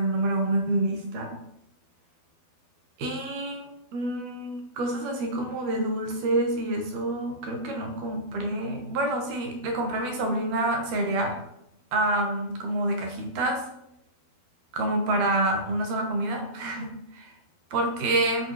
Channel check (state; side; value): late; left; 12 ms